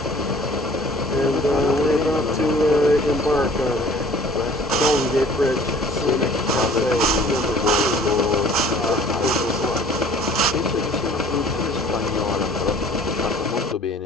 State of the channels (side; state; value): both; normal; correlation 0.51